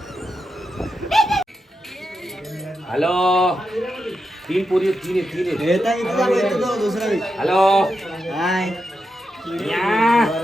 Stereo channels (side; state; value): both; normal; correlation 0.87